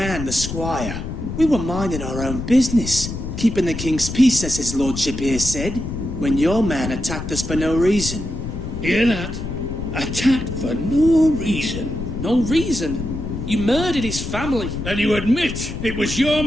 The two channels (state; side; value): noise; left; rumble, 7 dB below the sound